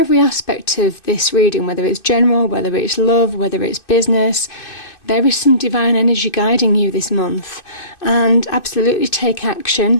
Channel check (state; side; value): late; right; 2.6 ms